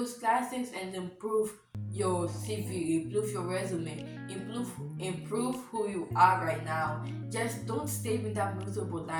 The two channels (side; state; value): both; identical; correlation 1.00